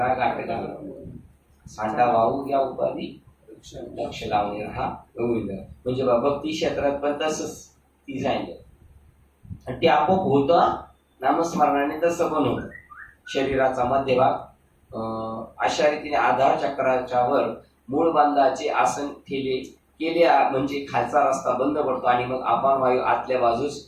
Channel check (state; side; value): identical; both; correlation 1.00